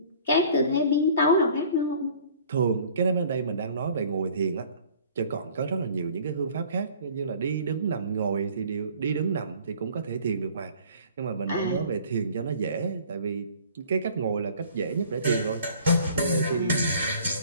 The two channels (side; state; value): both; inverted; correlation -0.51